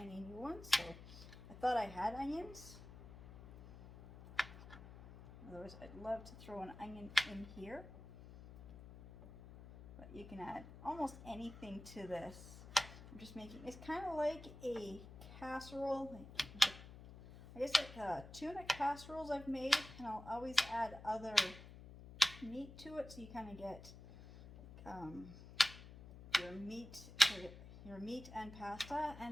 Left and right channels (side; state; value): left; noise; hum, 16 dB below the sound